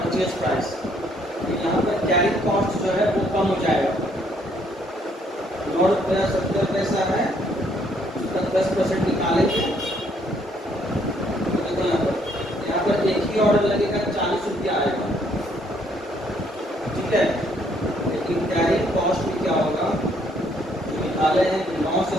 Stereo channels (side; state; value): both; normal; correlation 0.68